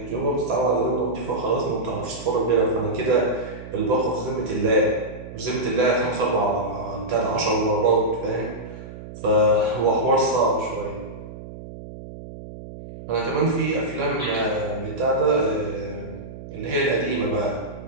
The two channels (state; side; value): noise; right; hum, 13 dB below the sound